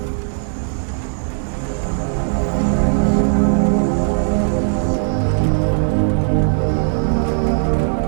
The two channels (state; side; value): silent; left; 67 dB below the other